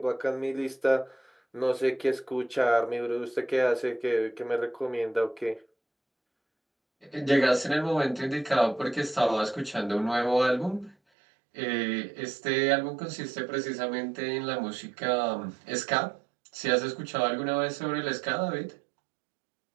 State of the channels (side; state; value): left; drops out; at 11.0 s